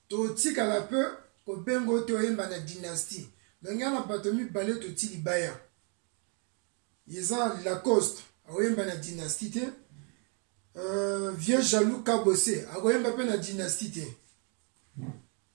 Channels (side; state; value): left; quieter; 39.0 dB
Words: Toti à la peur, au bengo toyemba la dynastie. Donc, il y a un batomi balé toti libaya. Yaza Lacoste, à oyemba la dynastie. Vieux jaloux kabosé, à oyemba la dynastie.